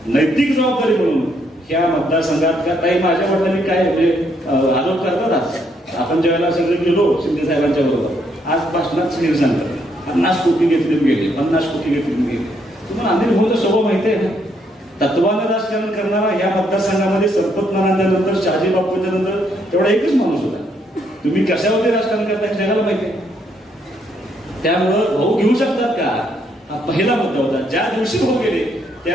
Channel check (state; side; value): normal; both; correlation 0.73